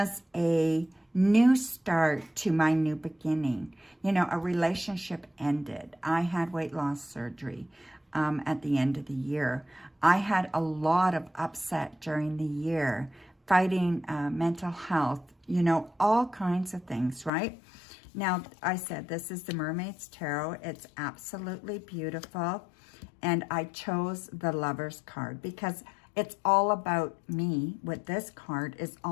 a, new start to my new beginning. You know, a relationship ended. I had weight loss surgery at the end of the year. I had a lot of upset during the year, fighting mental health, you know, all kinds of things, right? Now, I said this is the Mermaid's Tarot. It's absolutely beautiful. And I chose the Lover's card because it's all about me. With this card, it's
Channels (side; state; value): right; drops out; at 17.3 s